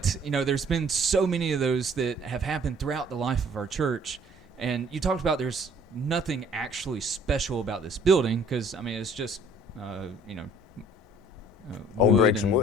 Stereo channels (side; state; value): both; normal; correlation 0.56